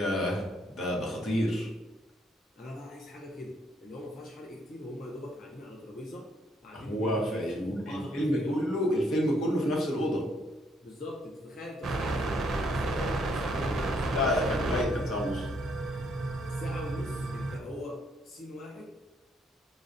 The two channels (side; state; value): both; normal; correlation 0.70